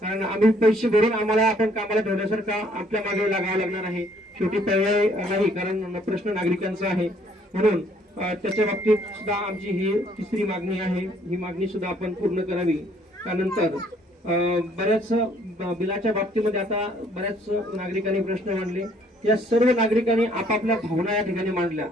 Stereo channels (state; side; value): normal; both; correlation 0.63